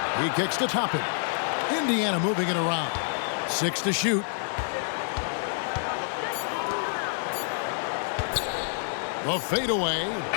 He kicks to Toppin. Indiana moving it around. 6 to shoot. The fadeaway.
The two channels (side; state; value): right; silent; digital silence